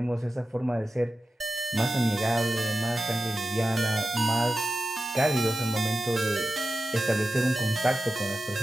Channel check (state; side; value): normal; both; correlation 0.93